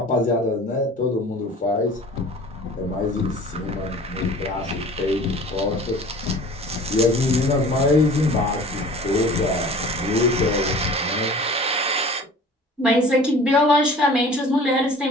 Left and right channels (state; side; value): normal; both; correlation 0.45